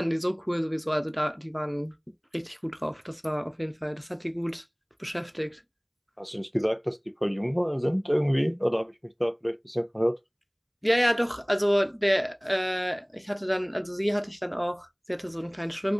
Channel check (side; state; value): both; identical; correlation 1.00